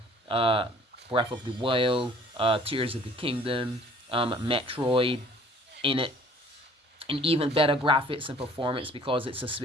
Breath of the Wild, Tears of the Kingdom, Metroid in it. And even better graphics and performance because it's a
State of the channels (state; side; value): normal; both; correlation 0.54